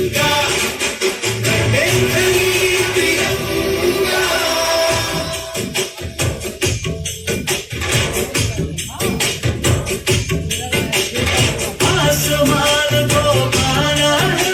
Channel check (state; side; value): identical; both; correlation 1.00